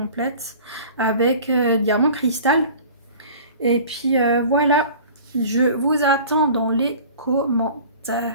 avec diamant cristal. Et puis voilà, je vous attends dans les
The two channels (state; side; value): inverted; both; correlation -0.43